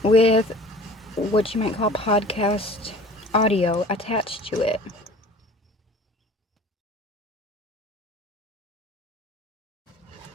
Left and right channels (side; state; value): both; normal; correlation 0.46